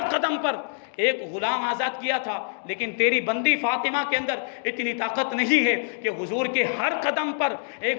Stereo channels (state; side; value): silent; right; digital silence